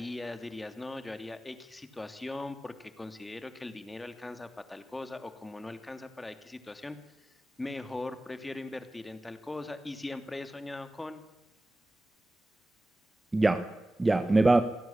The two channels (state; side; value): normal; both; correlation 0.96